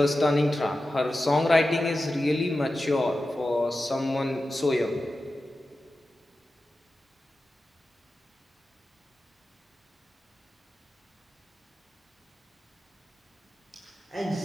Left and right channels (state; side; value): normal; both; correlation 0.93